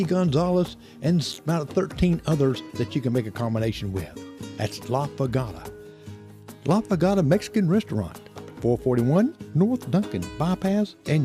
Gonzales and about 13 others that you can make a combination with. That's La Pagata. La Pagata Mexican Restaurant, 441 North Duncan Bypass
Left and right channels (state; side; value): identical; both; correlation 1.00